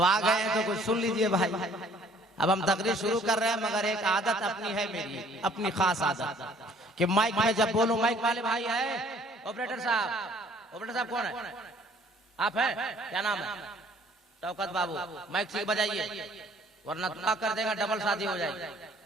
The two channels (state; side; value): normal; both; correlation 0.57